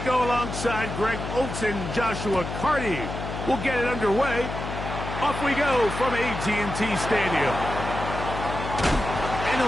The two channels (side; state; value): left; noise; hum, 7 dB below the sound